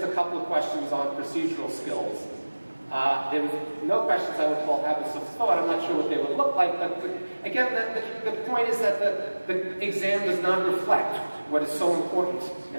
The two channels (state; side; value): inverted; both; correlation -1.00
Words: a couple of questions on procedural skills. There was no questions I would call habits of thought. I'm not sure what they would look like, but again, the point is that the exam does not reflect what is so important,